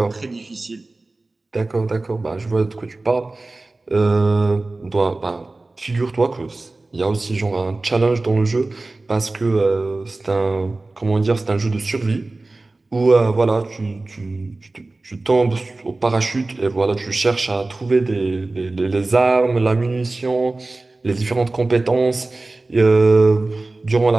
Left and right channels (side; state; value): left; quieter; 3.1 dB